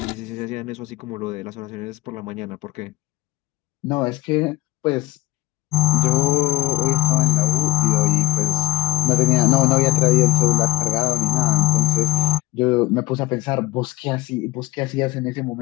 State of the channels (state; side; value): quieter; right; 16.7 dB